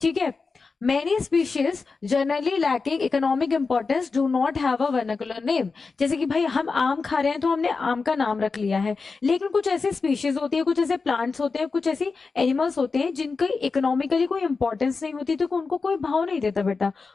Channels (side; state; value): right; quieter; 4.5 dB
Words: ठीक है। Many species generally lacking economic importance do not have a vernacular name। जैसे कि भाई हम आम खा रहे हैं तो हमने आम का नाम रख लिया है, लेकिन कुछ ऐसे स्पीशीज होती है, कुछ ऐसे प्लांट्स होते हैं, कुछ ऐसी एनिमल्स होते हैं जिनकी इकोनॉमिकली कोई इंपॉर्टेंस नहीं होती, तो उनको कोई भाव नहीं देता बेटा,